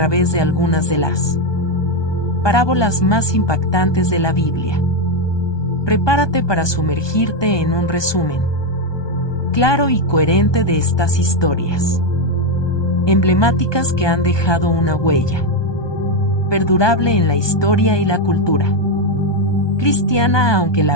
de algunas de las parábolas más impactantes de la Biblia. Prepárate para sumergirte en un resumen claro y coherente de estas historias emblemáticas que han dejado una huella perdurable en la historia y la cultura cristiana. Aunque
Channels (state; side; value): late; right; 1.2 ms